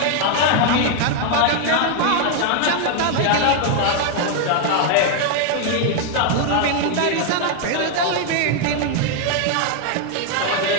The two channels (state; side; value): different; both; correlation 0.00